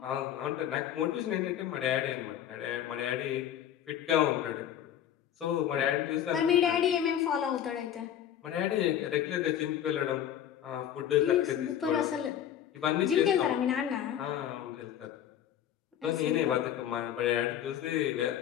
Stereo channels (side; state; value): right; quieter; 10.3 dB